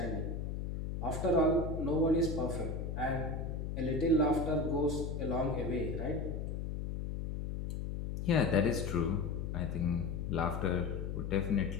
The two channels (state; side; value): noise; left; hum, 4 dB below the sound